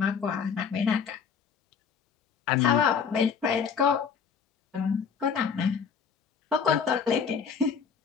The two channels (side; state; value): right; quieter; 6.6 dB